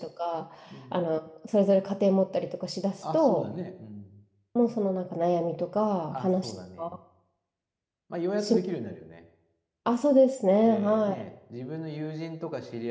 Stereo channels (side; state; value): both; identical; correlation 1.00